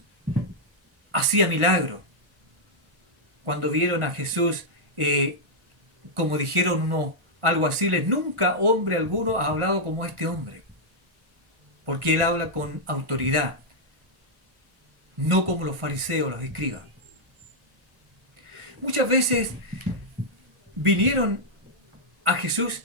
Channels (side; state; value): left; late; 1.4 ms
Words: hacía milagros, cuando vieron a Jesús, como dijeron uno, algo así, nunca hombre alguno ha hablado como este hombre, porque él habla con autoridad, no como los fariseos, los escribas. Muchas veces vinieron a Jesús